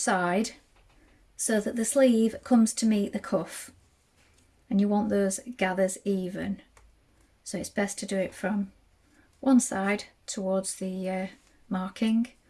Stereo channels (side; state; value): both; identical; correlation 1.00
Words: so that the sleeve comes to meet the cuff. And you want those gathers even, so it's best to do it from one side towards the marking